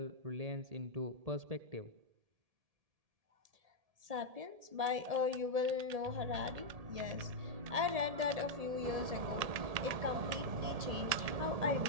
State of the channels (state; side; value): late; left; 1.8 ms